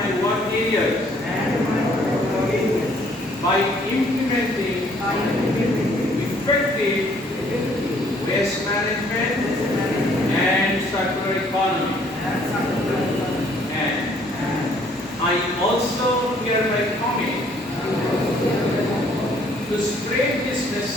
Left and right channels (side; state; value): both; normal; correlation 0.62